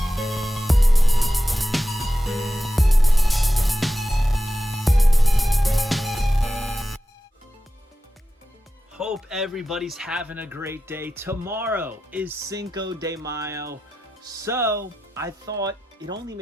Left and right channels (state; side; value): normal; both; correlation 0.92